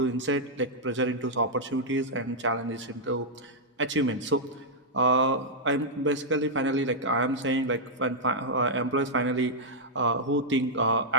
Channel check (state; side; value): normal; both; correlation -0.05